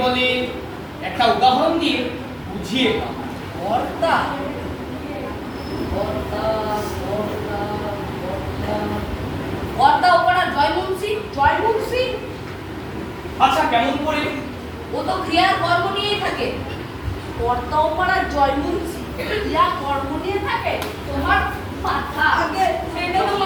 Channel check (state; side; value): identical; both; correlation 1.00